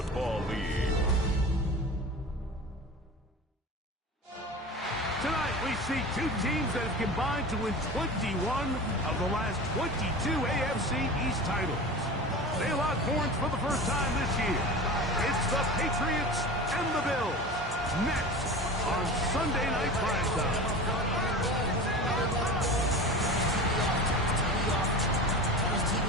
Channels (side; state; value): both; normal; correlation 0.33